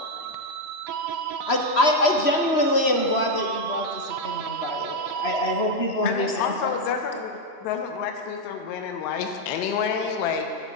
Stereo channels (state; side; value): late; right; 3.0 ms